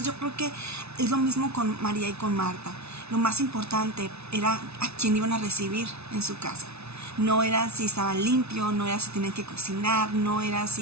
yo creo que es lo mismo con María y con Marta. Lo más importante era a quién iban a recibir en su casa. No era si estaban limpios, no era si tenían que cocinar, no era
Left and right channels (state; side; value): late; left; 0.80 ms